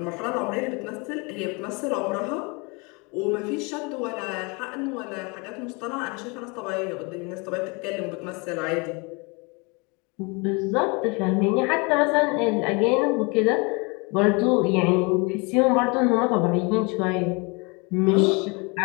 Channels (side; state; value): right; quieter; 29.8 dB